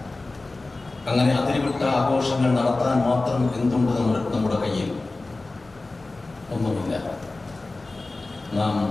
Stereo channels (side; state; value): right; quieter; 3.2 dB